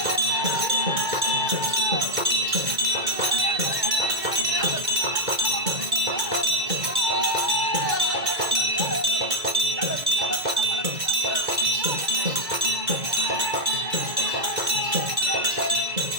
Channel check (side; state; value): left; late; 2.2 ms